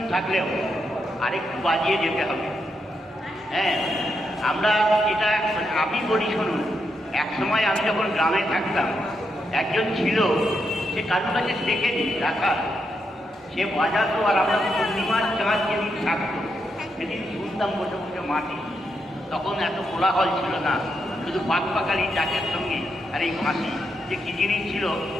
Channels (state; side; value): normal; both; correlation 0.82